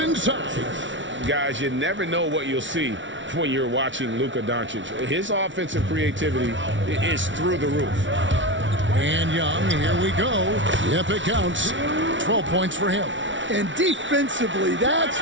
Guys, you never know what you'll see when you're watching Luka Doncic. His offensive creativity is through the roof. And Young, here we go. Yep, it counts. 12 points for him. And defensively, that's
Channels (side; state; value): left; late; 0.55 ms